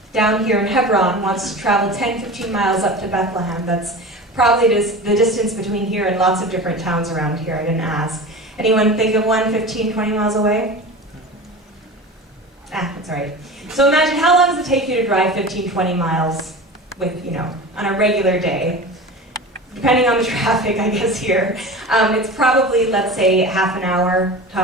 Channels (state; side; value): normal; both; correlation 0.33